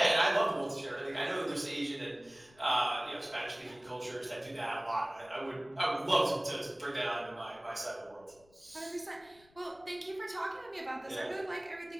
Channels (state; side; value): noise; left; rumble, 29 dB below the sound